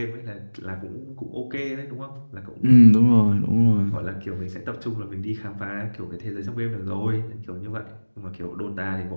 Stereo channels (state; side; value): inverted; both; correlation -1.00